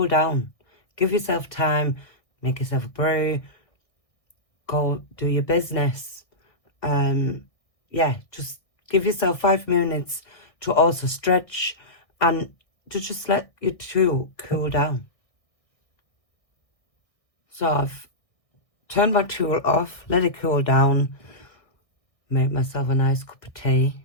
down. Give yourself time, make yourself a brew, go do your business. Yeah, just give yourself 5 minutes to also stretch and to just let your tool cool down. So I've turned my tool off, let it cool down, made myself a nice cup of tea,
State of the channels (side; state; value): right; late; 1.6 ms